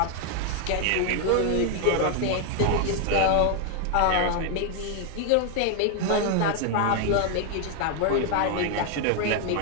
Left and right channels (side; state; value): both; different; correlation 0.00